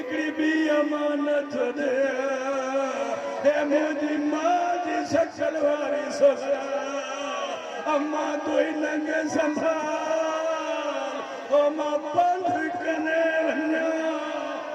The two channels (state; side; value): identical; both; correlation 1.00